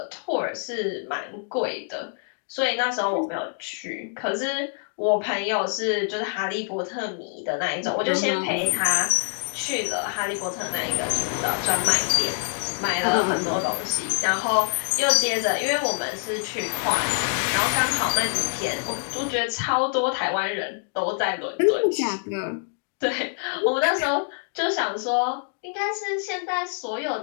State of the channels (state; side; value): silent; right; digital silence